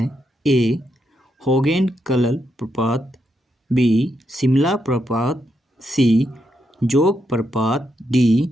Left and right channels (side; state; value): both; normal; correlation 0.81